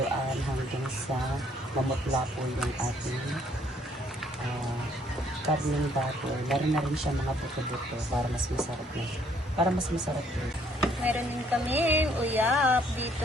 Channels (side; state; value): both; normal; correlation 0.65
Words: hanggang sa mamutla po yung ating karneng baboy. Meron na rin siya mga buto-buto para mas masarap na. Para mas masarap din. Meron din kami uyap dito